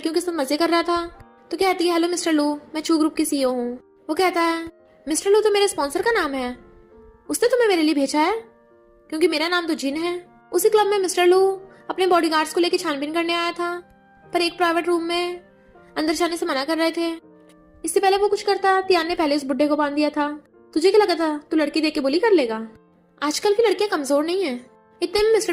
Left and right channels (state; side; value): identical; both; correlation 1.00